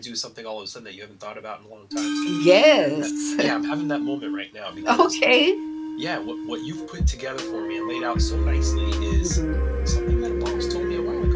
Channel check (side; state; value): both; identical; correlation 1.00